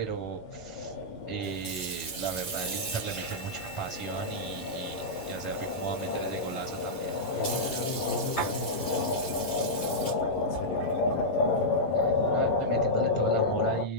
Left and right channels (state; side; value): late; right; 11 ms